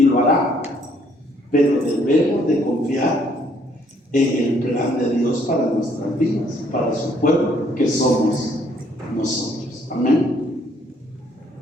lo hará. Pero debemos de confiar en el plan de Dios para nuestras vidas, para su pueblo, que somos nosotros. Amén.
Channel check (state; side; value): normal; both; correlation 0.66